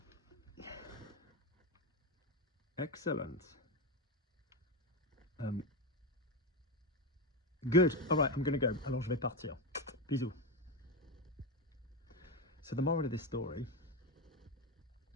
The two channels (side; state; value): both; normal; correlation 0.12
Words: Excellent. Good. All right, I'm going to go. Alors, je vais partir. Bisous. So the moral of this story...